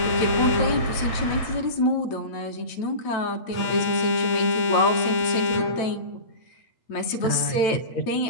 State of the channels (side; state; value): right; late; 9.0 ms